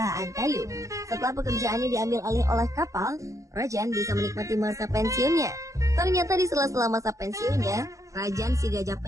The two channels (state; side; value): late; left; 0.16 ms